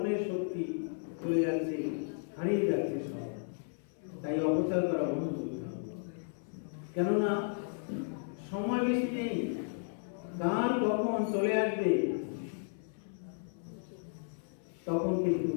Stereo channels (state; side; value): silent; right; 55 dB below the other